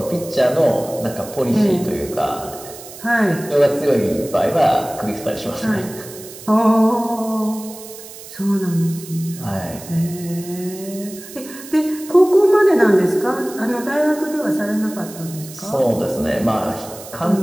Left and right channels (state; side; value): noise; right; hiss, 15 dB below the sound